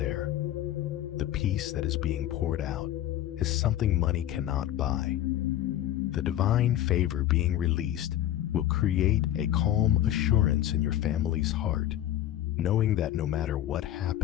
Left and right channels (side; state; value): right; quieter; 12.7 dB